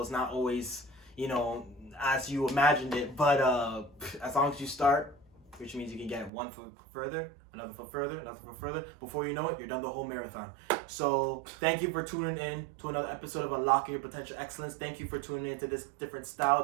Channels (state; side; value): drops out; left; at 6.3 s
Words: It's not always, as you imagined it. But as long as you start, which means you can get one foot further, another foot further, another foot further. Before you know it, you're done the whole marathon. So thank you for tuning in to another episode of Unlocking Your Potential Excellence. Thank you for tuning in to this different style,